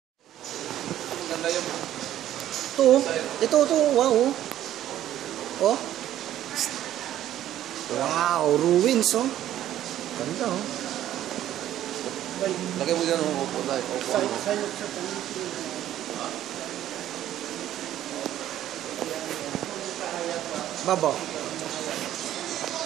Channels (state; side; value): quieter; left; 12.3 dB